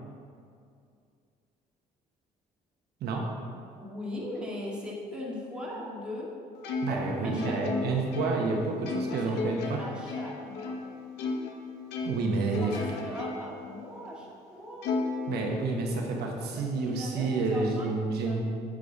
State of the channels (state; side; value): normal; both; correlation 0.56